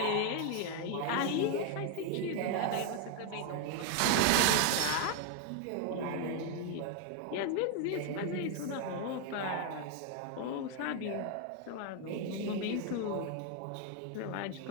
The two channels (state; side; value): different; both; correlation 0.01